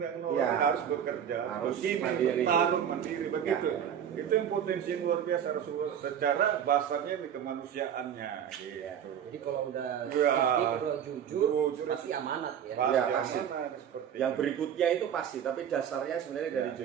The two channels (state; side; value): quieter; left; 9.0 dB